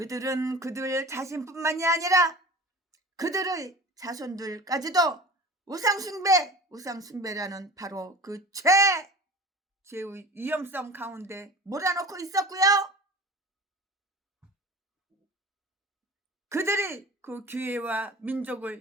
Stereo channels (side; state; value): both; normal; correlation 0.38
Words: 그들 자신뿐만이 아니라 그들의 자손들까지도 우상숭배라는 바로 그 죄의 위험성 가운데 몰아넣고 있었고요. 그들이 그 교회와